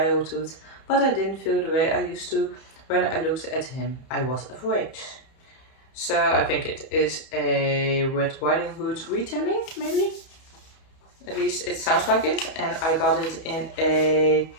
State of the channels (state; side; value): late; right; 31 ms